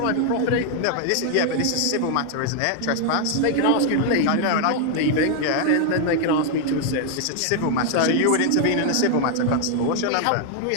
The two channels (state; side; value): different; both; correlation 0.00